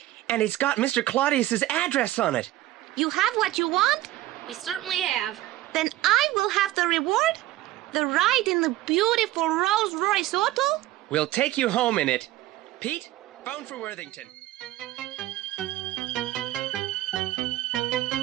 and it's got Mr. Claudius's address on it. You have what you want? We certainly have. Then I will have the reward? The ride in the beautiful Rolls-Royce auto? We'll take you home in it. Pete, phone for Worthington.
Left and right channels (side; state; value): left; quieter; 15.7 dB